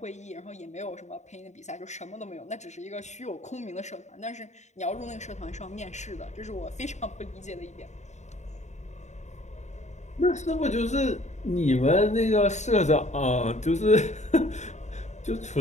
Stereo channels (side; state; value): right; late; 0.34 ms